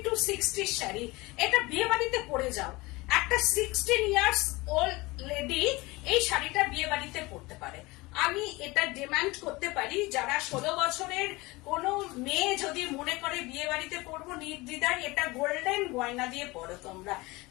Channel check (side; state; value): right; quieter; 22.4 dB